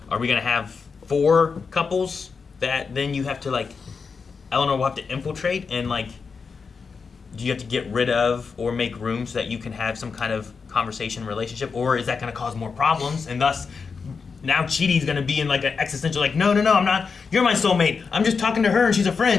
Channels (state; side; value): quieter; right; 5.3 dB